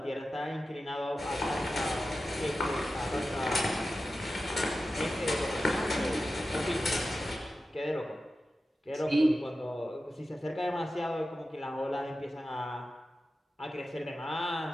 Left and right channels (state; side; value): normal; both; correlation 0.93